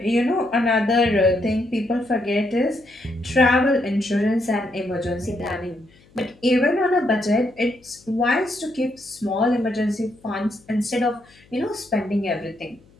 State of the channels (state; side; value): noise; left; hum, 29 dB below the sound